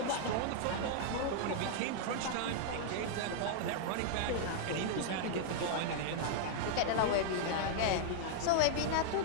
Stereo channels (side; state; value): both; different; correlation -0.01